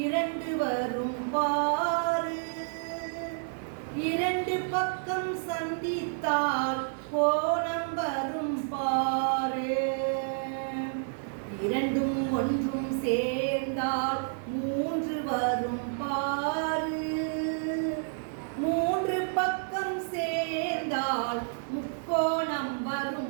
இரண்டு வரும் பாரு, இரண்டு பக்கம் சந்தித்தால் கோணம் வரும் பாரு. இரண்டும் ஒன்றும் சேர்ந்தால் மூன்று வரும் பாரு, மூன்று பக்கம் சேர்ந்தால் முக்கோணம்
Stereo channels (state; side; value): silent; left; digital silence